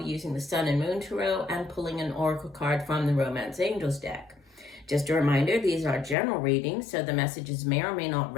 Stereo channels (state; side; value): drops out; right; at 6.2 s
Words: using the Sun and Moon Tarot and pulling an oracle card from the Romance Angels deck. Just a reminder, these are general readings, so the messages may or may not